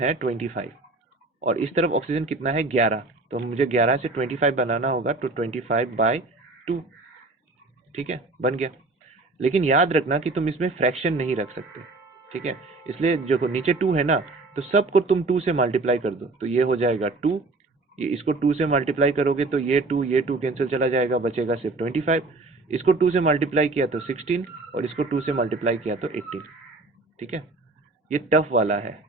25, और इस तरफ ऑक्सीजन कितना है, 11। तो मुझे 11 से 25 बनाना होगा, तो 25/2। ठीक है, बन गया। लेकिन याद रखना कि तुम इसमें फ्रैक्शन नहीं रख सकते। ठीक है, इसलिए जो नीचे 2 है ना, तो सबको तुम 2 से मल्टीप्लाई कर दो, तो ये हो जाएगा 2। ये इसको 2 से मल्टीप्लाई करोगे तो ये 2 कैंसिल चला जाएगा, बचेगा सिर्फ 25। इसको 2 से मल्टीप्लाई किया तो 16, और इसको 2 से मल्टीप्लाई किया तो 18। ठीक है, ये टफ वाला है।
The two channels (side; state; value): left; quieter; 3.3 dB